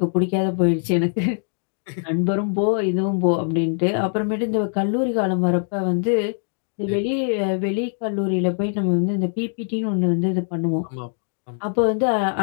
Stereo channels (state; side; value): silent; right; 64 dB below the other